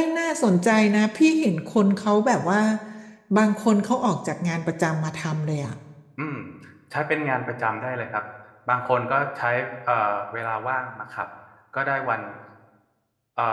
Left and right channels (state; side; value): identical; both; correlation 1.00